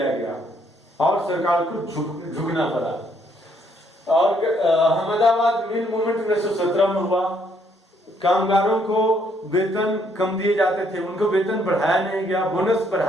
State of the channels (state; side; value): normal; both; correlation 0.69